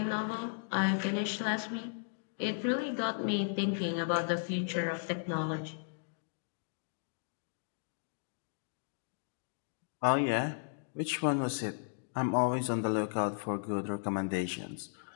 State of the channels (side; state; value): right; silent; digital silence